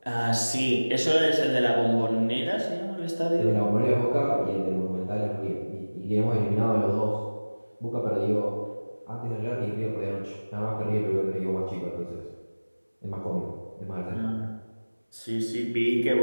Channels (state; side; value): inverted; both; correlation -1.00